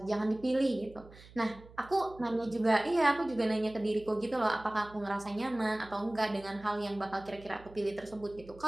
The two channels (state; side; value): noise; right; hum, 21 dB below the sound